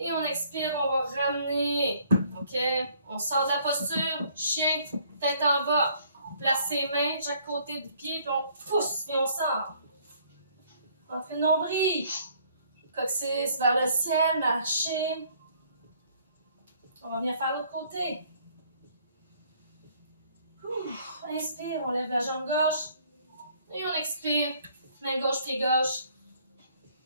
on expire, on va ramener. OK? On sort de la posture, chien, tête en bas. Place ses mains de chaque côté du pied, puis on pousse, et on sort. Entrez le nombril. Coccyx vers le ciel, marcher. On va venir faire l'autre côté. Inspire, on lève la jambe gauche. Et on expire, main gauche, pied gauche.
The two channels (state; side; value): inverted; both; correlation -0.62